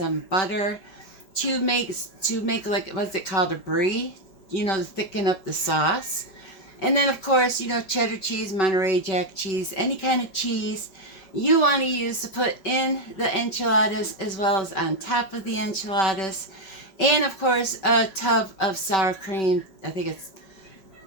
butter to make like, what's it called, a brie, to thicken up the sauce. And then of course, cheddar cheese, Monterey Jack cheese, any kind of cheese you want to use to put in the enchiladas as well as on top of the enchiladas. And of course, a tub of sour cream. I think it's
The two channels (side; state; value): right; late; 5.2 ms